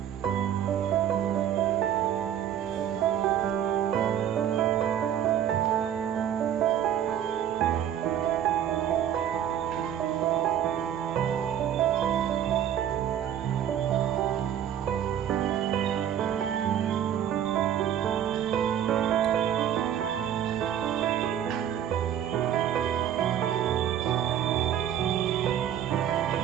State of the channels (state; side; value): quieter; left; 10.0 dB